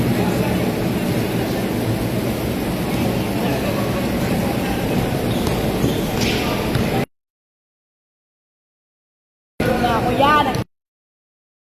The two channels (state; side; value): identical; both; correlation 1.00